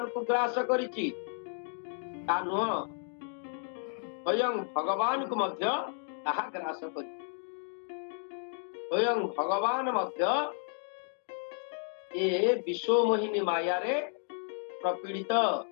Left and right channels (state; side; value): silent; right; 56 dB below the other